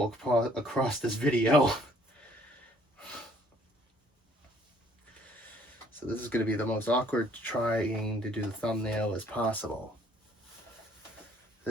across this video. So this is going to be the most awkward trying to do the thumbnail as possible.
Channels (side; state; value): both; normal; correlation 0.61